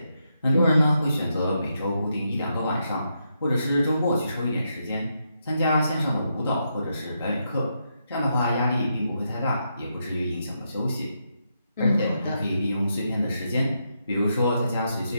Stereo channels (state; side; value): inverted; both; correlation -0.82